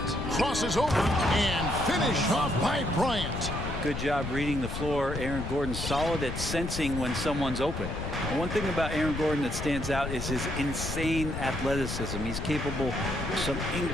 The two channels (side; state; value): left; noise; rumble, 5 dB below the sound